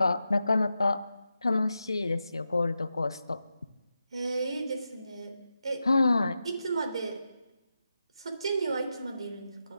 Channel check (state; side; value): inverted; both; correlation -0.89